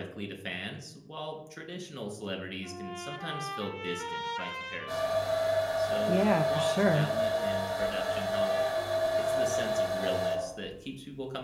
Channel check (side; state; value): both; identical; correlation 1.00